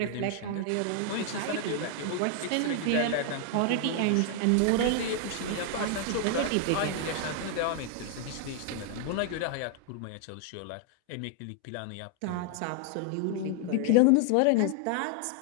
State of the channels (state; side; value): different; both; correlation 0.00